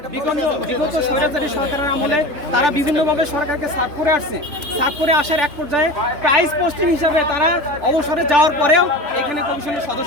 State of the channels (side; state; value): left; late; 3.4 ms